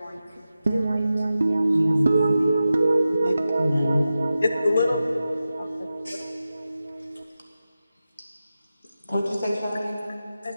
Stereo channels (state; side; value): inverted; both; correlation -0.92